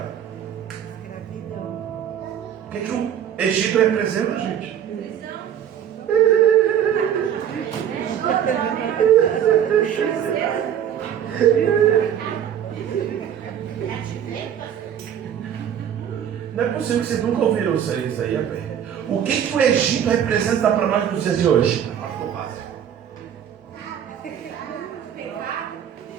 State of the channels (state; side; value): quieter; left; 9.3 dB